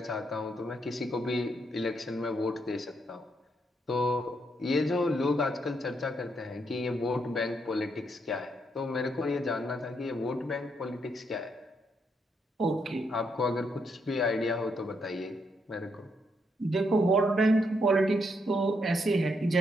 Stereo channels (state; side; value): normal; both; correlation 0.77